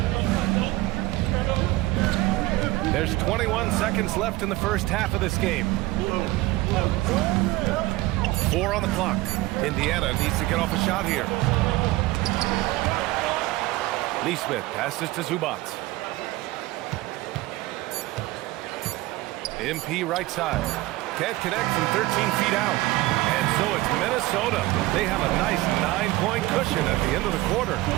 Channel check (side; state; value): left; quieter; 19.0 dB